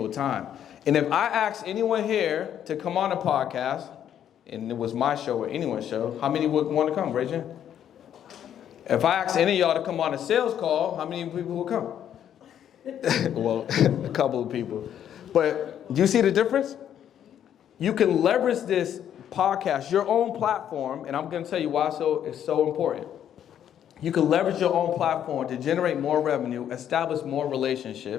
time. And if I ask anyone here to come on a podcast, and it was my show or anyone's show, how many would want to come? Raise your hand. If I ask any of y'all to come on a sales call, how many people will come? Well, a couple of people. But do you see the difference? You can leverage this podcast, your own platform, and I'm going to tell you why it's so important. You can leverage your own platform to generate more revenue, establish more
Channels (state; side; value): quieter; right; 9.9 dB